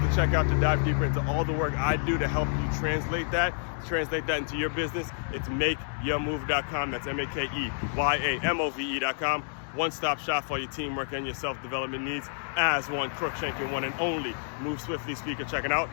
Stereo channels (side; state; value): right; silent; digital silence